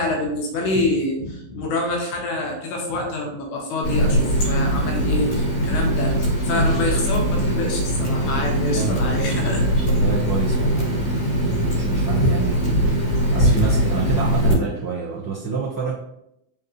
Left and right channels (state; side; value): late; right; 15 ms